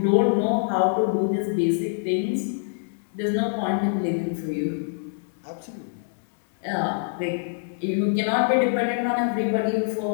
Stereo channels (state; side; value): silent; right; digital silence